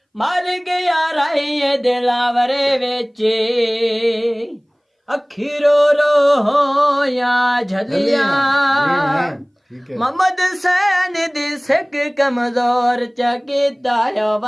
ਮਰ ਗਿਆ ਰਾਏ ਦਿਲਾਵਰੇ ਵਿੱਚ ਅੱਖੀ ਰੋ ਰੋ ਹੋਇਆ ਝਲੀਆਂ ਮੁਹੰਮਦ ਸੈਨ ਦੀ ਸਿੱਖ ਕਮਜ਼ੋਰ ਚ ਕੀਤਾ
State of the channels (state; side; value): identical; both; correlation 1.00